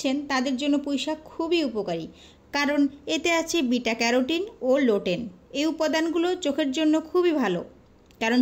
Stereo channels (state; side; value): identical; both; correlation 1.00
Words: তাদের জন্য পুঁই শাক খুবই উপকারী, কারণ এতে আছে বিটা ক্যারোটিন ও লোটেন। এই উপাদানগুলো চোখের জন্য খুবই ভালো, কারণ